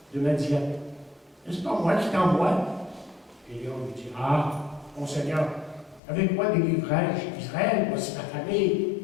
de Madian. N'est-ce pas moi qui t'envoie? Et Léon lui dit, ah, mon Seigneur, avec quoi délivrerai-je Israël? Voici ma famille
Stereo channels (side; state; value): right; drops out; at 6.0 s